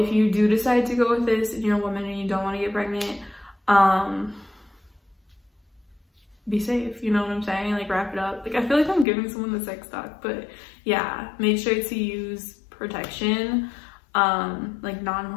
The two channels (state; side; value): drops out; right; at 9.1 s